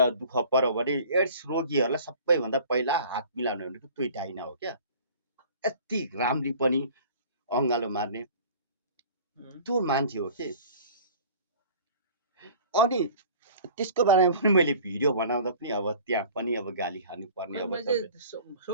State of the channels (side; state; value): both; inverted; correlation -0.46